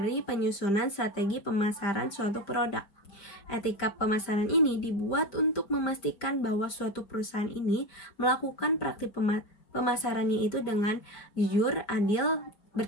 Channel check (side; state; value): right; late; 5.1 ms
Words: penyusunan strategi pemasaran suatu produk. Etika pemasaran ini dibuat untuk memastikan bahwa suatu perusahaan ini melakukan praktik pemasarannya itu dengan jujur, adil,